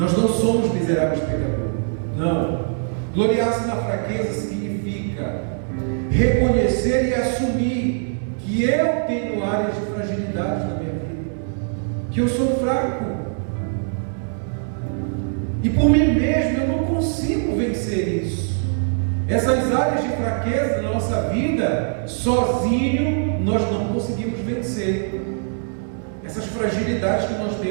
não somos miseráveis pecadores. Não. Gloriar-se na fraqueza significa reconhecer e assumir que eu tenho áreas de fragilidade na minha vida, que eu sou fraco, e por mim mesmo eu não consigo vencer isso. Essas áreas de fraqueza da nossa vida, sozinho nós não conseguimos vencer essas fragilidades que nós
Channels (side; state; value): left; silent; digital silence